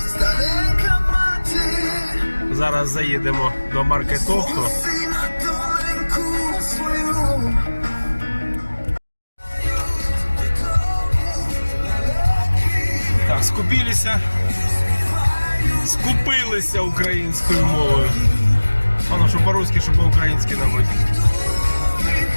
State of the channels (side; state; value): both; inverted; correlation -1.00